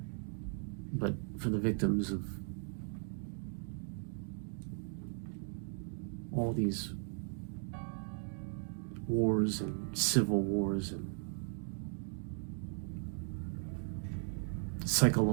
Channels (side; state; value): left; silent; 53 dB below the other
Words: but for the victims of all these wars and civil wars and